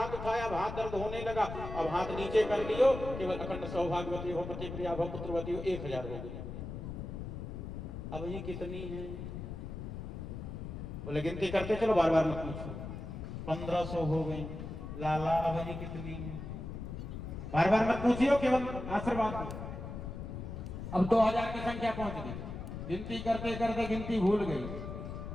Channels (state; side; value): noise; left; rumble, 7 dB below the sound